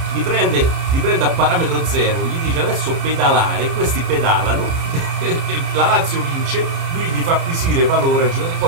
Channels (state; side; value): late; left; 30 ms